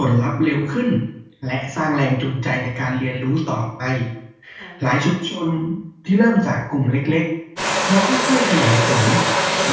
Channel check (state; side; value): identical; both; correlation 1.00